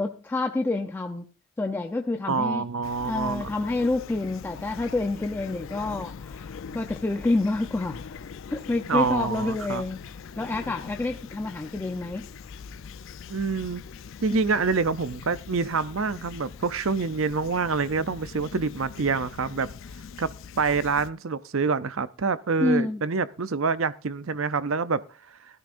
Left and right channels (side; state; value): both; normal; correlation 0.33